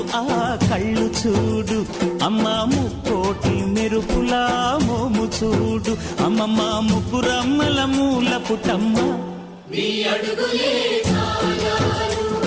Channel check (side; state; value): both; identical; correlation 1.00